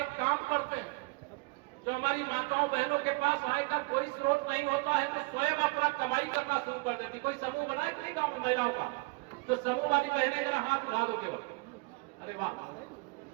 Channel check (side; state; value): left; quieter; 27.3 dB